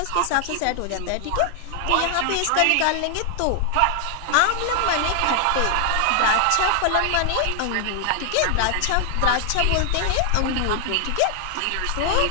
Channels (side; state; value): both; different; correlation 0.00